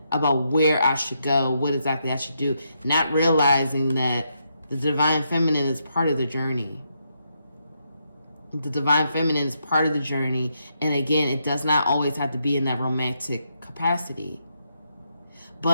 about where I should go, what exactly I should do. Not realizing that the divine feminine is part of the journey. The divine feminine is part of the journey. And again, it does not always have to be in that romantic capacity.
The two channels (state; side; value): inverted; both; correlation -0.80